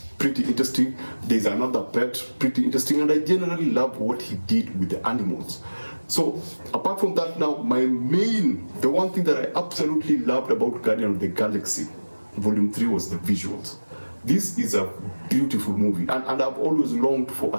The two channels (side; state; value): both; inverted; correlation -1.00